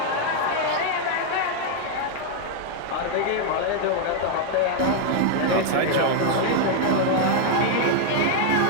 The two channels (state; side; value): different; both; correlation 0.00